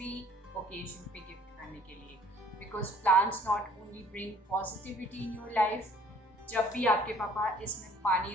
भी occasion पे gift करने के लिए, because plants not only bring positivity in your life. जब भी आपके पापा इसमें पानी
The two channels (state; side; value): normal; both; correlation 0.56